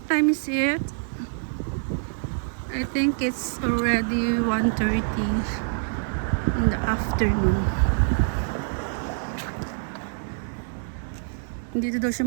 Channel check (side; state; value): left; silent; 61 dB below the other